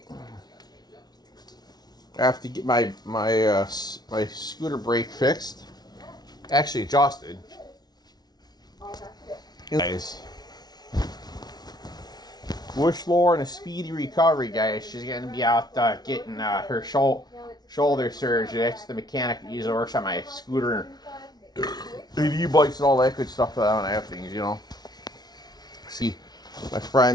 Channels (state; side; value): late; right; 0.19 ms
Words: I have to get my scooter brake fixed. Actually adjusted. Guys. Wish Lauren a speedy recovery, guys. She's gonna be out getting her shoulder surgery. That's the mechanic that usually works on my scooter and e-bikes and all that good stuff that I don't have things, you know. See my